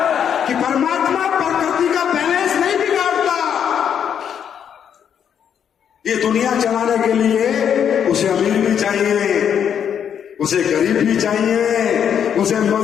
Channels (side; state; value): right; quieter; 8.4 dB